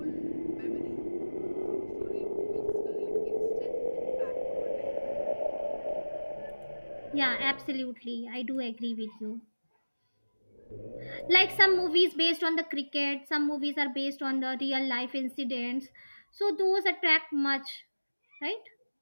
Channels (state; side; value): inverted; both; correlation -1.00